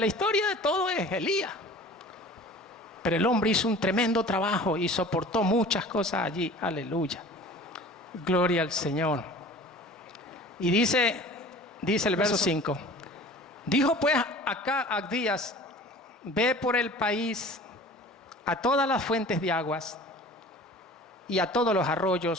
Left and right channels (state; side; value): normal; both; correlation 0.43